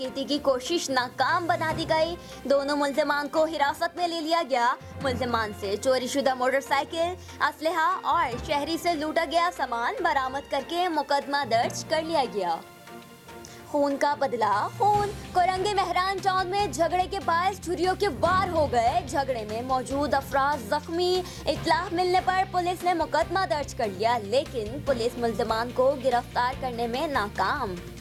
की कोशिश नाकाम बना दी गई। दोनों मुल्जिमान को हिरासत में ले लिया गया। मुल्जिमान से चोरीशुदा मोटरसाइकिल, असलहा और शहरी से लूटा गया सामान बरामद करके मुकदमा दर्ज कर लिया गया। खून का बदला खून। कोरंगे मेहरान टाउन में झगड़े के बायस छुरियों के वार हो गए। झगड़े में मौजूद अफराद जख्मी। इत्तला मिलने पर पुलिस ने मुकदमा दर्ज कर लिया, लेकिन पुलिस मुल्जिमान को गिरफ्तार करने में नाकाम।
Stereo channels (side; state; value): both; identical; correlation 1.00